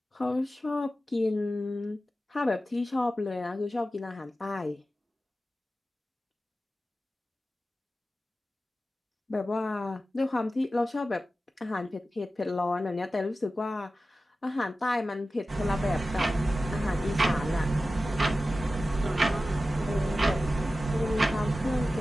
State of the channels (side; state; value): both; normal; correlation 0.94